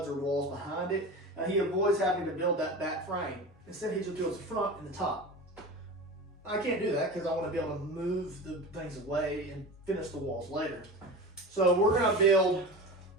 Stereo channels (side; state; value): both; normal; correlation 0.31